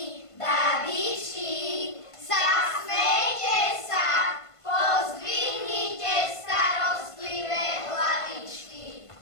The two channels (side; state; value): right; late; 1.5 ms